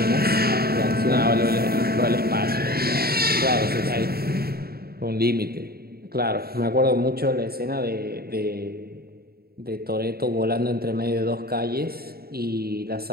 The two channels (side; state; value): left; late; 0.45 ms